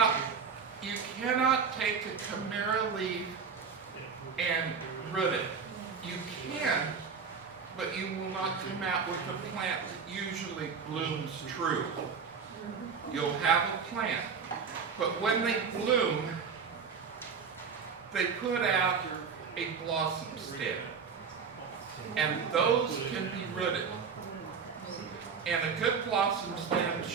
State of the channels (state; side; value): quieter; left; 6.0 dB